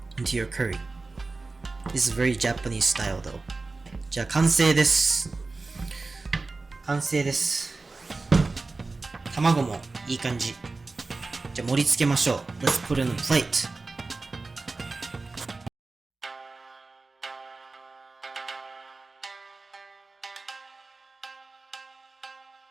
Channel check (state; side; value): quieter; left; 3.6 dB